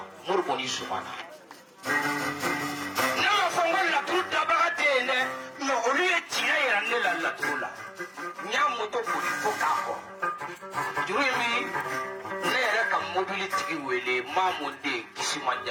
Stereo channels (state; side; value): identical; both; correlation 1.00